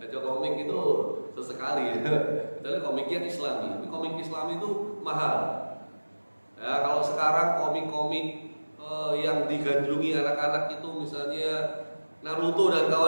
komik itu sesekali ya. Kecuali komiknya Islami. Tapi komik Islami itu mahal. Ya, kalau sekarang komik-komik yang digandrungi anak-anak itu misalnya Naruto dan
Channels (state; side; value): inverted; both; correlation -1.00